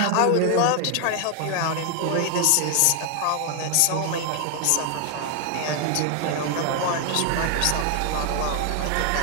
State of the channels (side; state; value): both; different; correlation 0.00